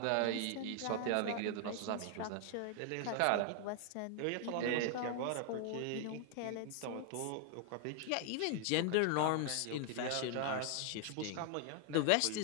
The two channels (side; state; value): both; different; correlation 0.00